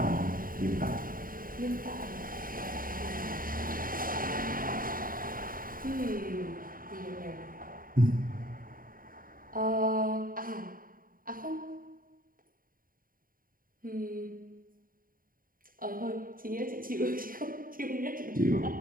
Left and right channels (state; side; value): late; left; 0.41 ms